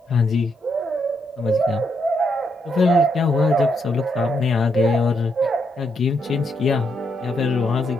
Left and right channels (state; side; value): normal; both; correlation 0.78